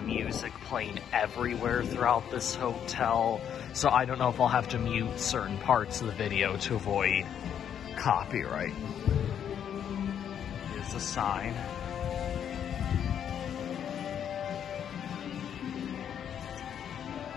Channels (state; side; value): quieter; right; 8.9 dB